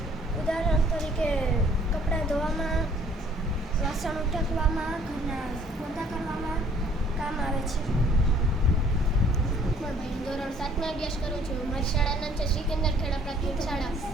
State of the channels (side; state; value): both; normal; correlation 0.58